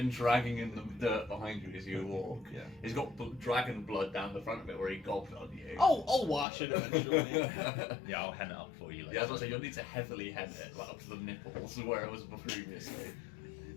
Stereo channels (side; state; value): right; drops out; at 6.5 s